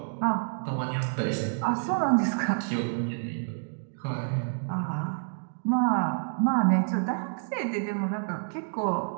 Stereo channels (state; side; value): silent; left; digital silence